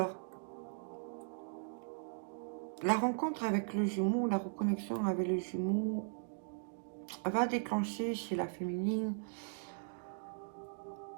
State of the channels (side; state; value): left; silent; digital silence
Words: la rencontre avec le jumeau, la reconnexion avec le jumeau va déclencher chez la féminine